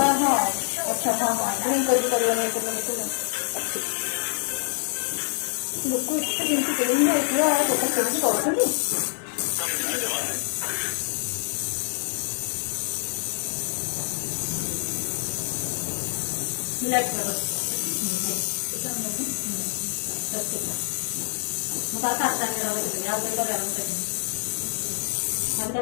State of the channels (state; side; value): silent; right; 60 dB below the other